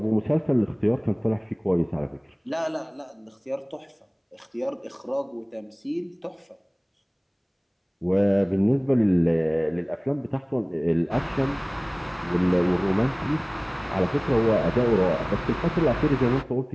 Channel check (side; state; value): both; identical; correlation 1.00